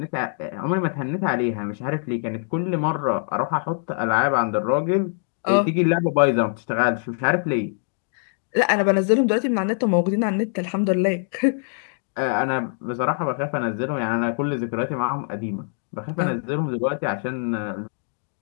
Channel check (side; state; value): right; silent; digital silence